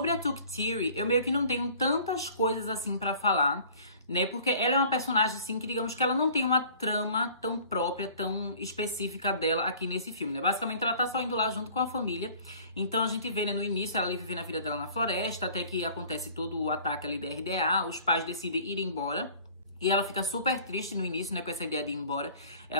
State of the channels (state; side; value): inverted; both; correlation -0.50